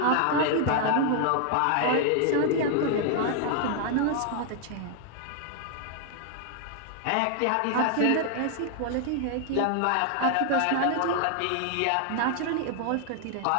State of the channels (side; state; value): both; different; correlation 0.00